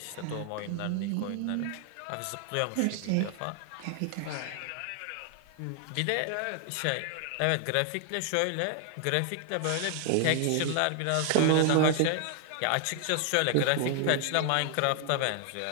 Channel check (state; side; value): different; both; correlation 0.00